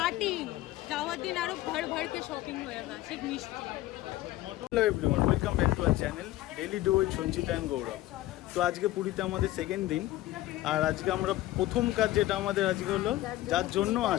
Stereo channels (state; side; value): quieter; right; 15.9 dB